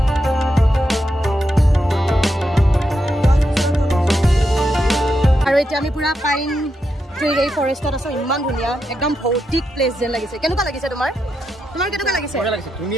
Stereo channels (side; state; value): both; normal; correlation 0.84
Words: আৰু এতিয়া আমি পুৰা পাইন ট্ৰি এই ফৰেষ্টত আছোঁ। ইমান ধুনীয়া, একদম ভৌতিক প্লেচ যেন লাগিছে। কেনেকুৱা লাগিছে তোমাৰ? তোমাৰ কেনেকুৱা লাগিছে?